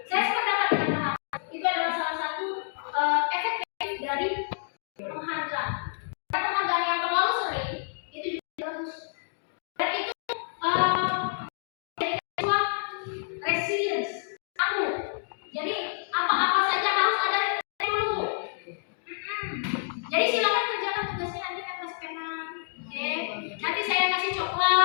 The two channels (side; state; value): right; silent; digital silence